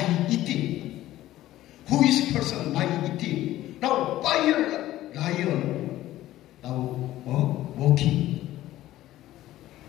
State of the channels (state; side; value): quieter; right; 14.8 dB